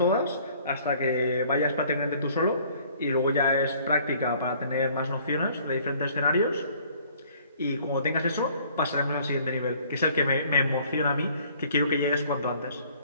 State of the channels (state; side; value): inverted; both; correlation -0.56